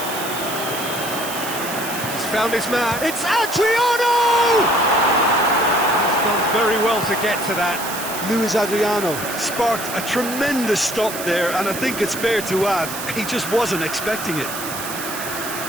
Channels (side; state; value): right; noise; hiss, 8 dB below the sound